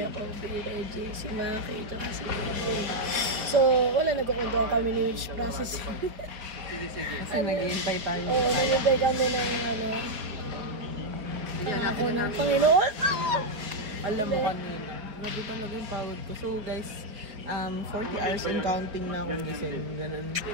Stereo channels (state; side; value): late; left; 4.5 ms